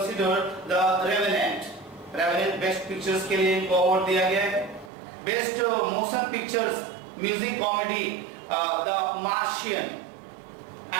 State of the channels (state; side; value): drops out; left; at 4.9 s